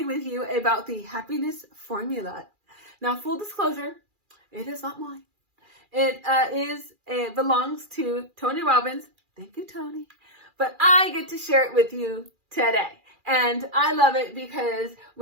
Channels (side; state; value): left; late; 2.4 ms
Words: with you about the happiness formula. Now, full disclosure, it is not mine. It belongs to Tony Robbins. Thank you, Tony. But I get to share it with you today. And I love it because